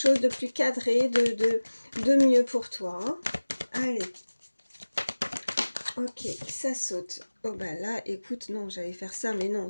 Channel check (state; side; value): inverted; both; correlation -1.00